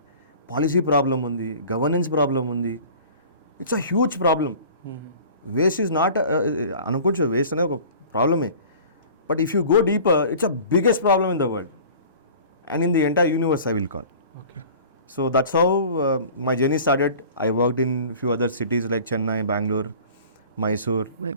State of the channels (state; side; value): inverted; both; correlation -0.44